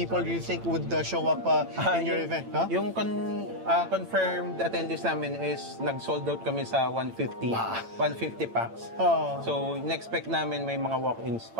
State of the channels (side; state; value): left; late; 8.9 ms